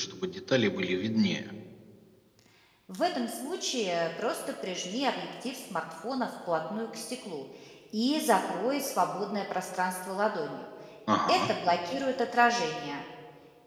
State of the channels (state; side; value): identical; both; correlation 1.00